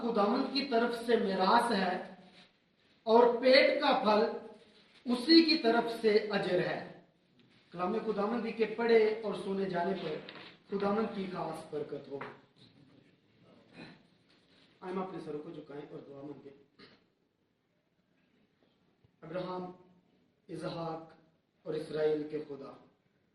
خداوند کی طرف سے میراث ہے اور پیٹ کا پھل اسی کی طرف سے اجر ہے۔ کلام خداوندی کے پڑھے اور سنے جانے پر خداوند کی خاص برکت ہو۔ ہم اپنے سروں کو جھکائیں اور دعا مانگیں۔ ابراہیم، اسحاق اور اسرائیل کے خدا،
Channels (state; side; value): identical; both; correlation 1.00